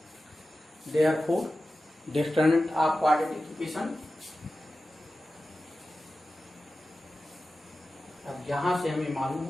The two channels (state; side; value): normal; both; correlation 0.94